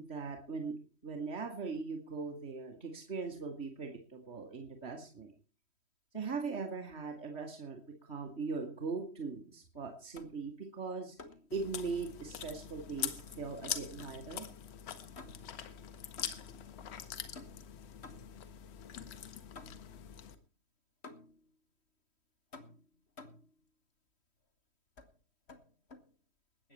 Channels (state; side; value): late; right; 3.1 ms